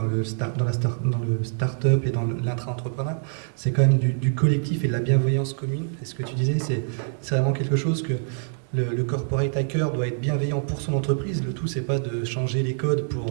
le start-up et dans l'intra-entrepreneur. C'est quand même du collectif et de la bienveillance commune. Et ce que tu disais, c'est vraiment quelque chose que le corporate hacker doit être bienveillant pour son entreprise. Le tout, c'est pas de changer les codes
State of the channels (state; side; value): silent; left; digital silence